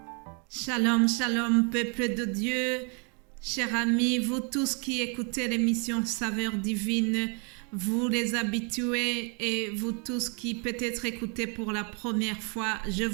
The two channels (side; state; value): left; quieter; 35.5 dB